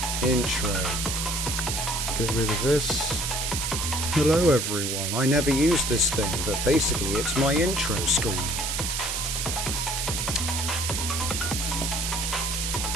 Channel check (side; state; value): right; noise; hiss, 1 dB below the sound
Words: Intro. Get rid of this. Hello everyone, I never used this thing, but basically it's my intro screen.